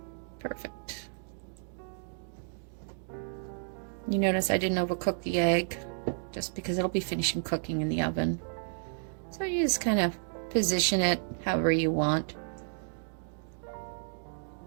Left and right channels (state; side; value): silent; left; digital silence